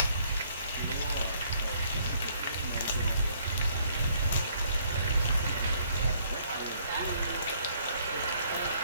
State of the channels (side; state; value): both; inverted; correlation -0.65